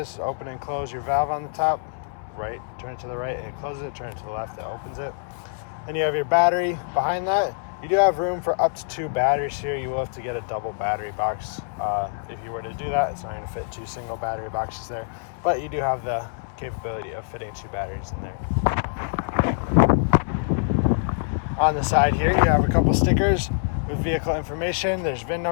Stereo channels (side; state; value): right; silent; 62 dB below the other